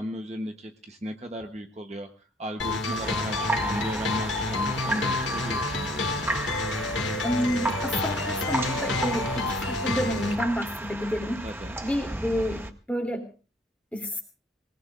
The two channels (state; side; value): normal; both; correlation 0.61